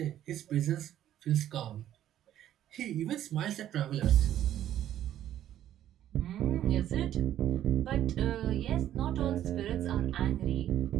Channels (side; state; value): left; quieter; 11.8 dB